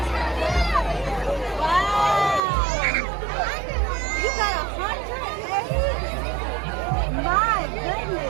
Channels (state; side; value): drops out; left; at 2.4 s